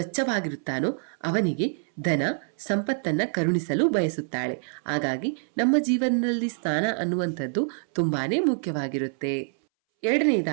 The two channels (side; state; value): left; silent; 61 dB below the other